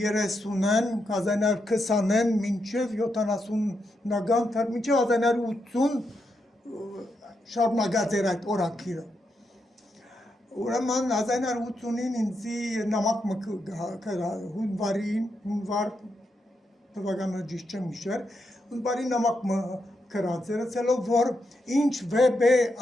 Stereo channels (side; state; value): both; normal; correlation 0.83